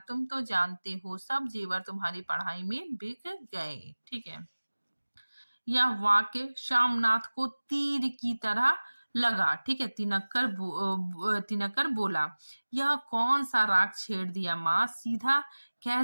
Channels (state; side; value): inverted; both; correlation -1.00